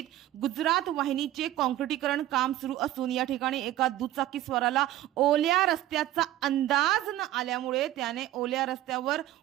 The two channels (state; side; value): quieter; left; 14.2 dB